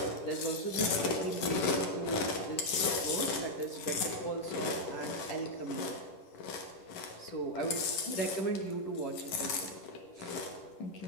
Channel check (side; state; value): right; late; 11 ms